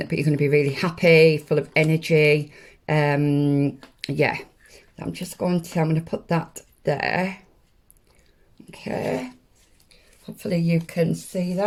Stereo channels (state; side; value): identical; both; correlation 1.00